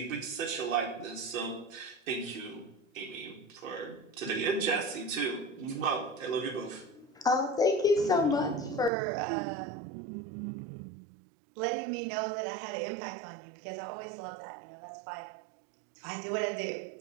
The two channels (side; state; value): left; drops out; at 8.9 s